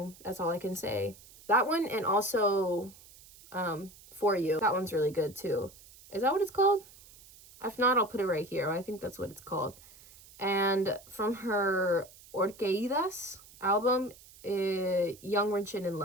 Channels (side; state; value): right; noise; hiss, 22 dB below the sound